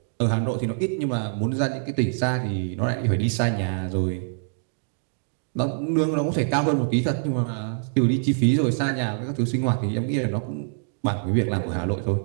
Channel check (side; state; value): left; silent; digital silence